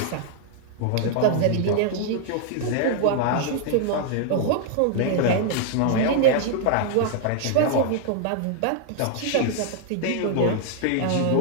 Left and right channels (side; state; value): both; different; correlation -0.01